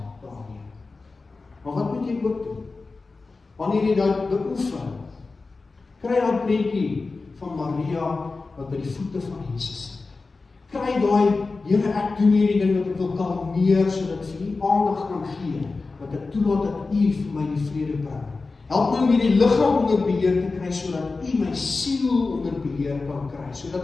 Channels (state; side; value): quieter; right; 3.9 dB